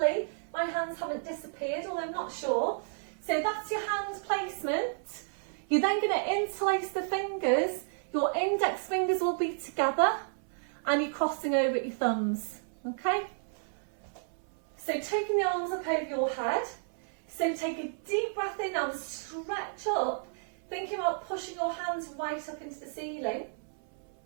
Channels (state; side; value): silent; left; 57 dB below the other